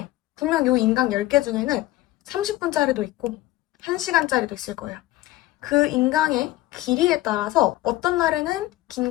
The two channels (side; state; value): right; quieter; 16.9 dB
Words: 분명 이 인강 10개 중에는 30분짜리도 있고 1시간짜리도 있을 거예요. 그 인강의 길이에 따라서 어떤 날에는 긴